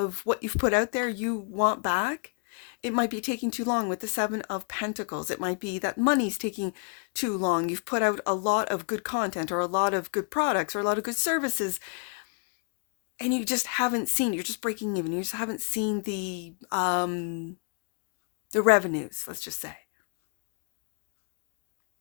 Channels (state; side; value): quieter; right; 38.0 dB